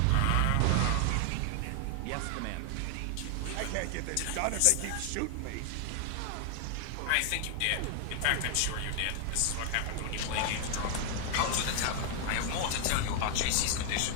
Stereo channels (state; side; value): different; both; correlation 0.00